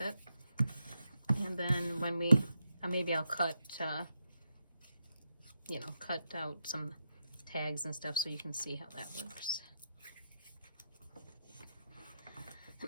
And then when we, maybe I'll cut, cut out some tags and stuff so you can see how that works.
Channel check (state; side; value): inverted; both; correlation -0.84